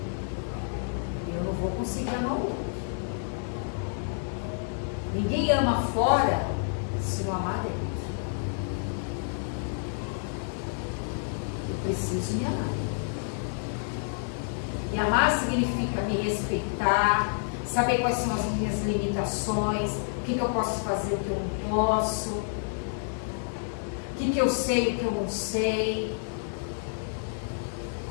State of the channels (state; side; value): silent; right; digital silence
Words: eu não vou conseguir amar o outro. Ninguém ama fora se não amar dentro. Eu preciso me amar. Me amar significa me respeitar, saber quais são as minhas limitações, o que eu posso fazer, o que eu não posso. O que eu sei e o que eu não sei,